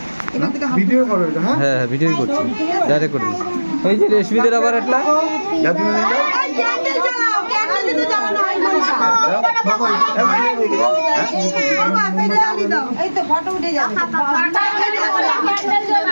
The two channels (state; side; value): inverted; both; correlation -1.00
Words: ভিডিও করো এটা। হ্যাঁ ভিডিও করছি ডাইরেক্ট করে দিচ্ছি। এই যে রেশমিদের আবার একটা ক্যান্ডেল জ্বালাও ক্যান্ডেল দিতে জ্বালানো হয় না বাবা এই তো ফটো উঠে যাবে।